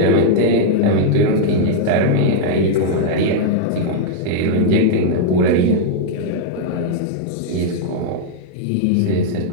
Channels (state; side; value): different; both; correlation -0.01